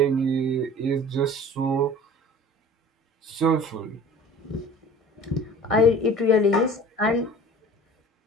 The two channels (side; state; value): both; normal; correlation 0.44